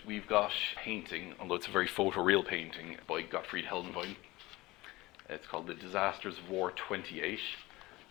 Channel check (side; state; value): right; quieter; 20.2 dB